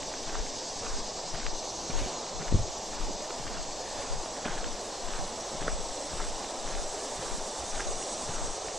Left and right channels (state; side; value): normal; both; correlation 0.65